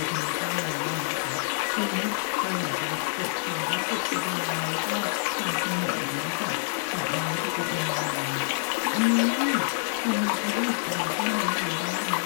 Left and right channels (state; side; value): silent; right; digital silence